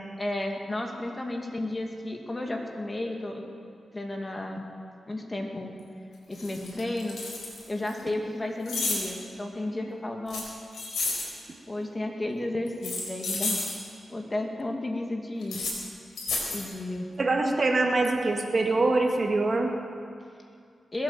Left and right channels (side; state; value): both; normal; correlation 0.90